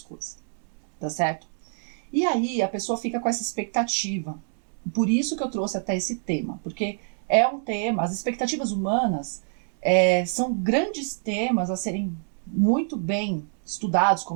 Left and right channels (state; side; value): silent; left; 57 dB below the other